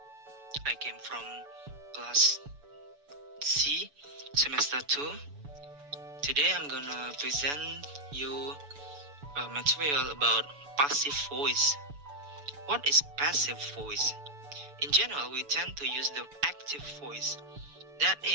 I came from class C, semester 2. Today I'm gonna present you material about passive voice. What is passive voice? In general, we tend to use the active voice. That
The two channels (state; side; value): late; left; 6.9 ms